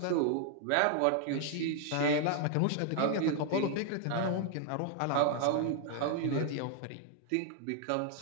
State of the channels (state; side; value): different; both; correlation 0.00